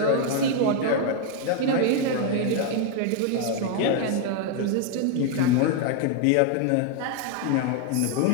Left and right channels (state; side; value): different; both; correlation 0.01